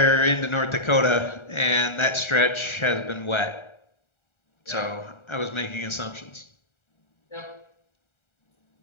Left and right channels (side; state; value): right; late; 1.4 ms